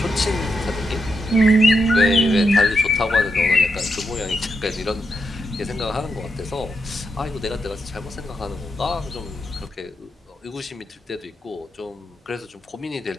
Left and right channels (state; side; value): normal; both; correlation 0.84